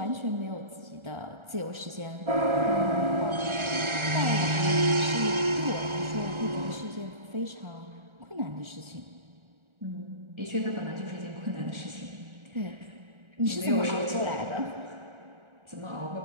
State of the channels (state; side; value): late; left; 1.4 ms